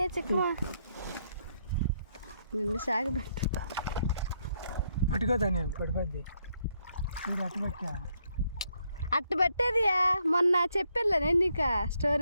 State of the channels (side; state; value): both; inverted; correlation -0.75